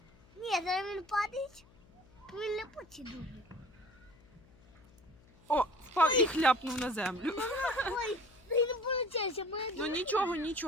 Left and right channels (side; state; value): left; noise; hum, 27 dB below the sound